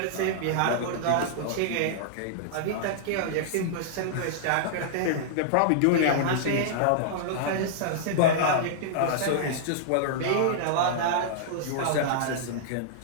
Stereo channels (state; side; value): different; both; correlation -0.02